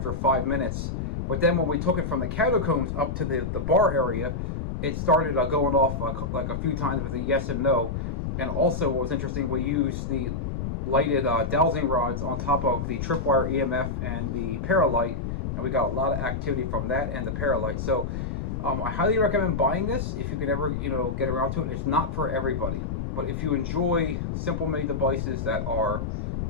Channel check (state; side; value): noise; left; rumble, 3 dB below the sound